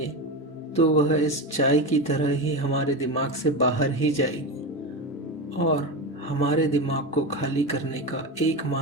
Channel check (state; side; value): normal; both; correlation 0.20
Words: तो वह इस चाय की तरह ही हमारे दिमाग से बाहर ही जाएगी। और हमारे दिमाग को खाली करने का